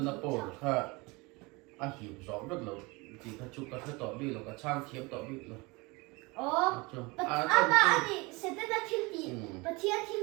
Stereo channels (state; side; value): quieter; left; 25.6 dB